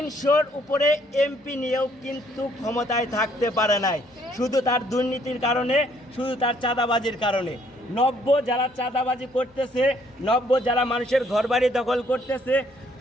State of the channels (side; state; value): both; normal; correlation 0.65